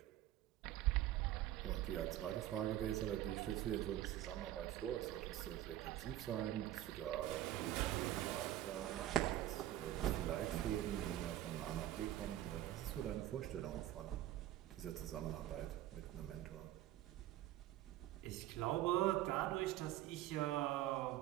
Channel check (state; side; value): quieter; left; 13.4 dB